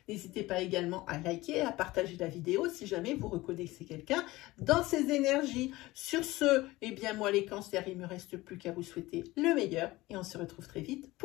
N'hésitez pas également à liker, à partager la vidéo si jamais vous reconnaissez quelqu'un dans ces énergies. Sur ce, eh bien moi les cancers, il ne me reste plus qu'à vous souhaiter le meilleur et on se retrouve très vite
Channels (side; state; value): right; quieter; 19.2 dB